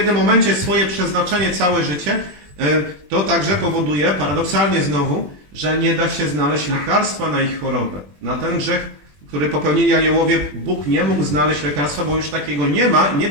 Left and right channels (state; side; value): late; left; 21 ms